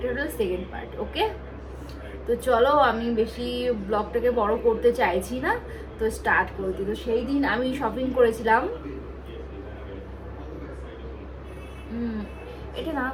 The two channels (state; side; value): identical; both; correlation 1.00